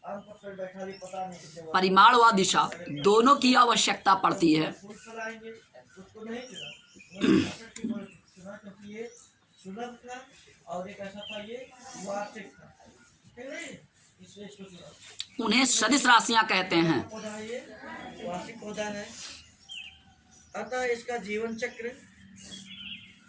आम पर बैठा भी पता नहीं, परिमाण व दिशा दोनों की आवश्यकता पड़ती है। उसको नहीं चुना क्योंकि ये सुलभ था और एक ऐसा था ये वार्षिक था, इसलिए इसको चुना। उन्हें सदिश राशियां कहते हैं। पौधा है, ये वार्षिक पौधा है, अतः इसका जीवन चक्र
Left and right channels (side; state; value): both; identical; correlation 1.00